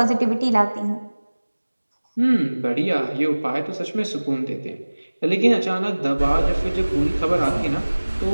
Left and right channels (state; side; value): inverted; both; correlation -1.00